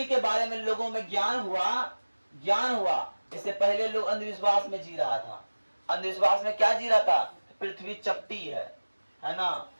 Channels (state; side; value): inverted; both; correlation -1.00